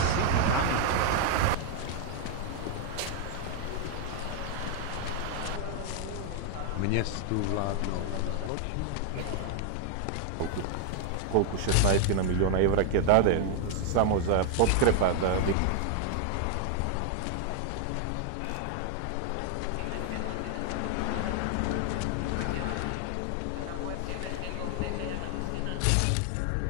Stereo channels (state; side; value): different; both; correlation 0.00